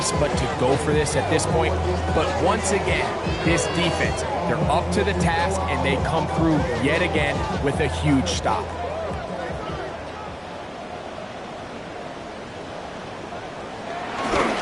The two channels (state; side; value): identical; both; correlation 1.00